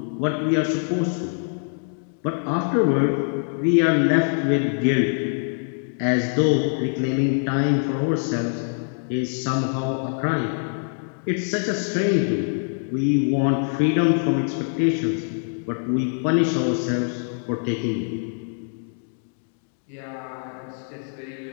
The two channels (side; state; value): right; silent; digital silence